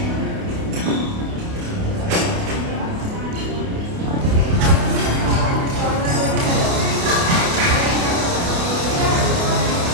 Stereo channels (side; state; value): left; late; 29 ms